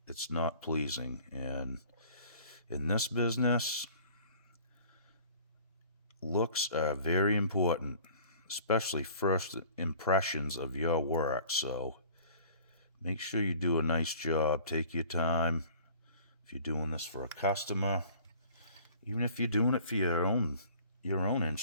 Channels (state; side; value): inverted; both; correlation -0.49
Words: it's not pleasing. And in this business, looks are very important, especially first impressions of your work. So Make sure you do a nice job. Take your time. If you're doing this for a customer, even if you're doing it for your own